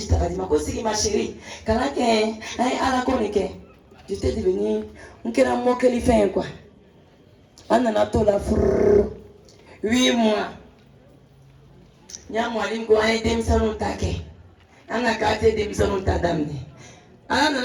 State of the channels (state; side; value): identical; both; correlation 1.00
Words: Radima, Kosiki, ma chérie, Kanake, à la Konike. Je t'ai devenu, on ne peut pas qu'il fait quoi. On a tout la 8 mois. Il y a moi qui a été salon taqué. On a gâté des salons tadamné. On